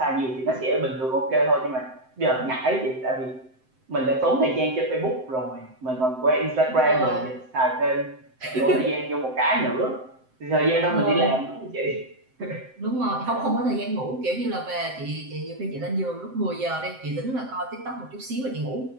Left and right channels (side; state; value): left; late; 7.7 ms